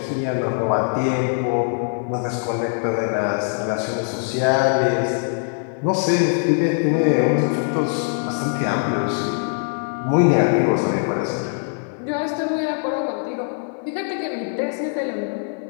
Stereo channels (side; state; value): right; silent; 57 dB below the other